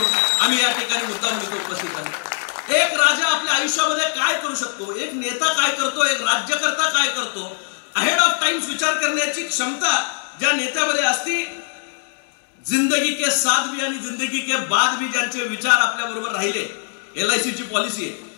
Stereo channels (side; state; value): right; silent; 65 dB below the other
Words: आम्ही या ठिकाणी मुद्दाम इथं उपस्थित आहे. एक राजा आपल्या आयुष्यामध्ये काय करू शकतो, एक नेता काय करतो, एक राज्यकर्ता काय करतो, अहेड ऑफ टाइम्स विचार करण्याची क्षमता ज्या नेत्यामध्ये असती, जिंदगी के साथ भी आणि जिंदगी के बाद भी ज्यांचे विचार आपल्या बरोबर राहिले. LIC ची पॉलिसी आहे